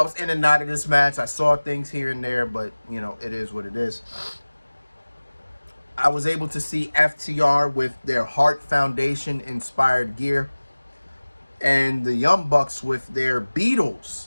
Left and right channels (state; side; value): inverted; both; correlation -1.00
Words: was in and out of this match. I saw things here and there, but, it is what it is. I was able to see FTR with their Heart Foundation inspired gear and the Young Bucks with their Beatles